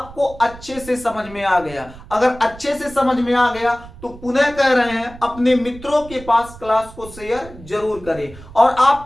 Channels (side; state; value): right; noise; rumble, 17 dB below the sound